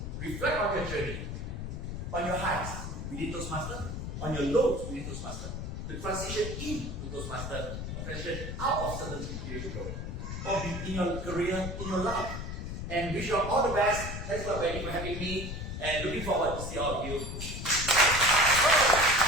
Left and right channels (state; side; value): noise; left; rumble, 6 dB below the sound